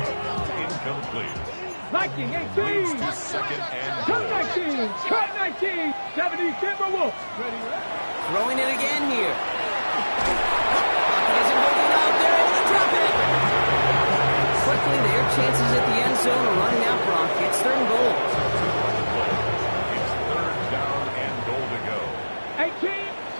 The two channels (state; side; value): inverted; both; correlation -1.00